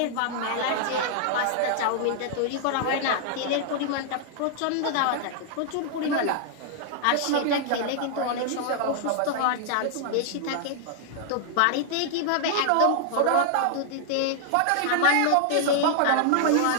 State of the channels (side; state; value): both; different; correlation -0.01